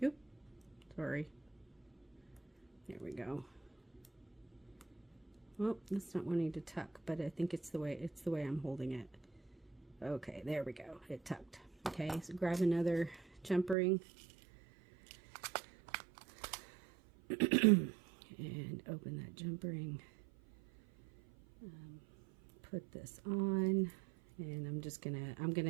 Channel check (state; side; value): drops out; left; at 13.8 s